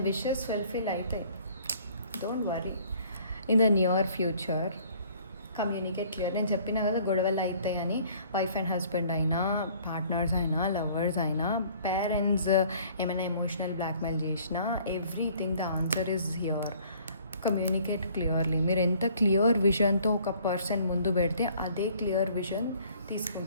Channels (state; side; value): inverted; both; correlation -0.57